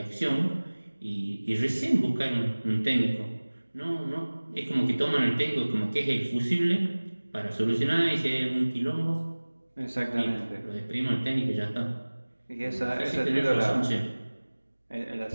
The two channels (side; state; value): both; inverted; correlation -1.00